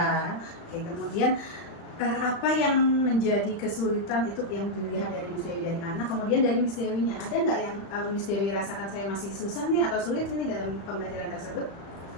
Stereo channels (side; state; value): right; late; 35 ms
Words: Oke, kemudian apa yang menjadi kesulitan itu yang dilihat dari Miss Dewi dari anak, kemudian dari Miss Dewinya ada nggak yang Miss Dewi rasakan saya masih susah nih atau sulit ini dalam pembelajaran tersebut?